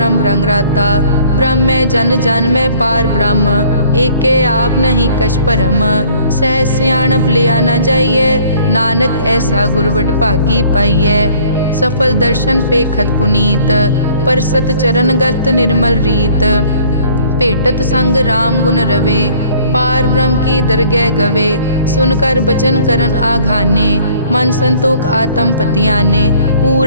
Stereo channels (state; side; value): inverted; both; correlation -0.56